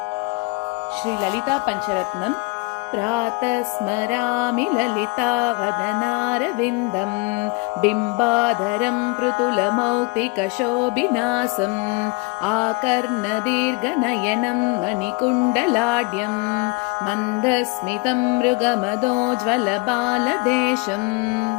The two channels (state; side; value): quieter; right; 29.2 dB